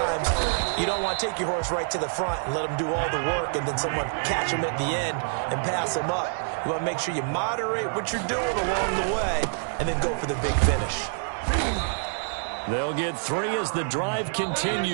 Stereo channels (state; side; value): silent; left; digital silence